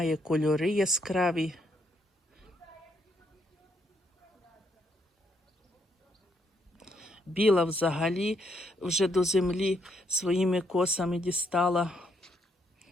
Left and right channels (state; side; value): normal; both; correlation 0.74